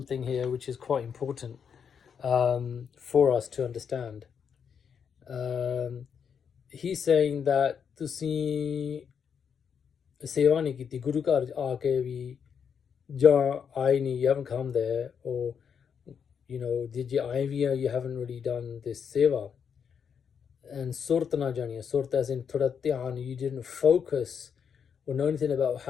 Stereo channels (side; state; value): right; quieter; 7.1 dB